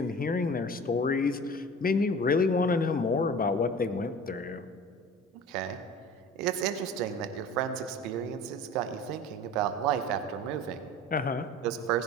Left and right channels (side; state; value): both; normal; correlation 0.40